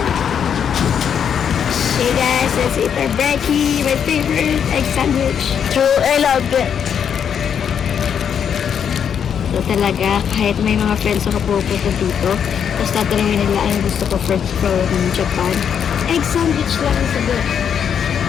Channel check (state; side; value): quieter; right; 8.0 dB